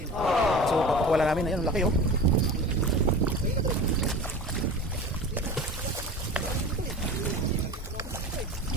So papakawala namin. Ayan, laki oh.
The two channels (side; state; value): both; normal; correlation 0.35